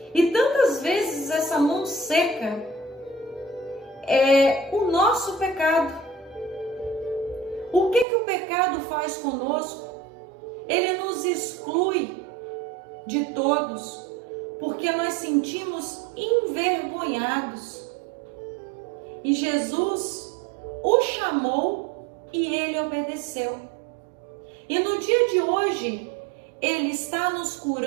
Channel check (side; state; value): left; drops out; at 8.1 s